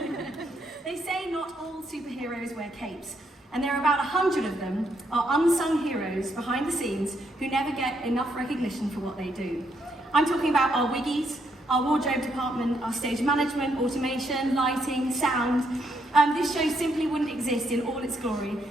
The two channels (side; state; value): both; normal; correlation 0.75